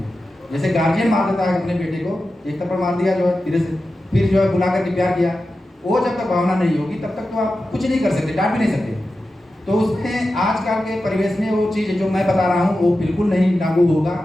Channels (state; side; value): normal; both; correlation 0.92